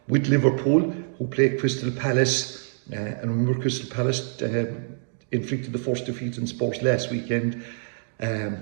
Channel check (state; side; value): silent; left; digital silence